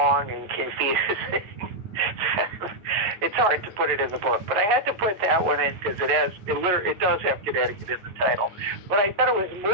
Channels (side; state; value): left; late; 9.5 ms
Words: and confusing, it's hard to put it in the book. But I had to put that one in because it does have Connecticut in the title. But I thought it was